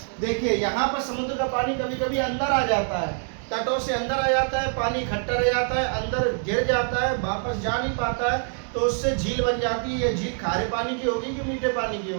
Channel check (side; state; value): left; silent; 60 dB below the other